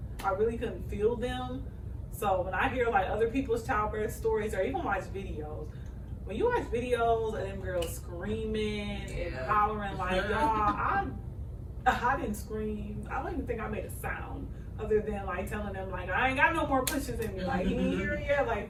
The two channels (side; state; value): both; identical; correlation 1.00